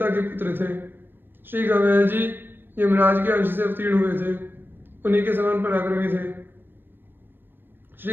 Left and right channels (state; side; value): late; left; 0.096 ms